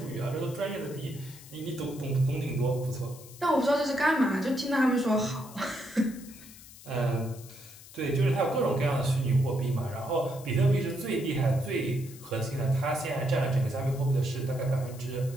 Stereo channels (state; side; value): noise; left; hiss, 19 dB below the sound